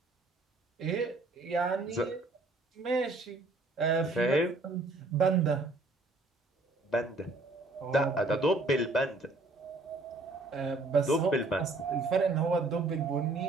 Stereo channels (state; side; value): quieter; left; 3.1 dB